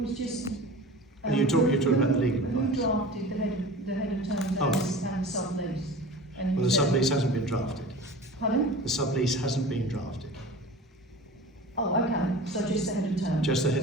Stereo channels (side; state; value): both; normal; correlation 0.37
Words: was just. You're talking about the legal Who advice. drafted the head of terms Oh. and sublease? And Well, the sublease hasn't been drafted. Pardon? The sublease hasn't been drafted. Oh, okay, so just the head of terms? Just the